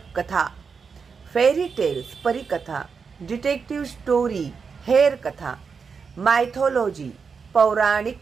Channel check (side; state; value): left; quieter; 5.6 dB